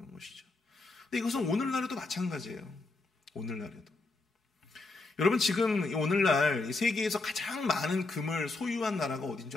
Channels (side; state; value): right; quieter; 3.4 dB